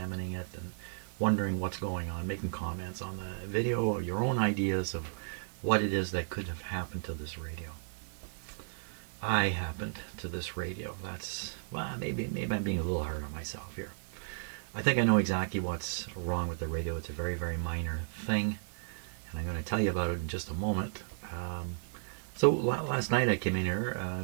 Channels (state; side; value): silent; left; 55 dB below the other